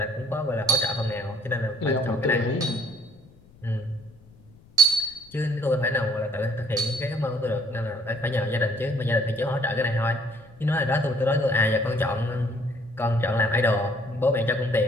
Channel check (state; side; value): noise; left; rumble, 26 dB below the sound